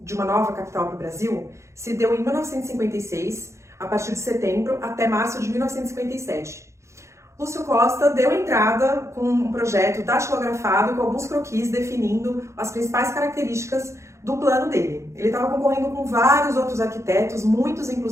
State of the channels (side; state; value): left; late; 0.14 ms